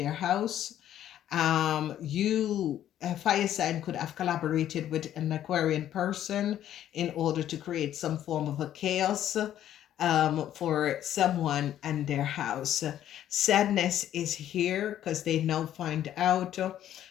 house. A fire sign, could have collaborated with an Aquarian person in order to create some form of a chaos for someone and their house. Sadness is here because they now find out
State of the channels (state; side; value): quieter; right; 11.4 dB